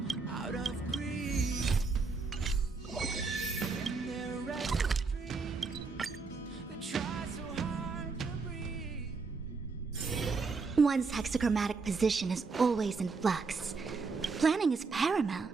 out of greed. In their restless dream, they try so hard to breathe. One's hexachromatic position is always in flux. Planning is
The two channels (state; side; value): quieter; left; 4.5 dB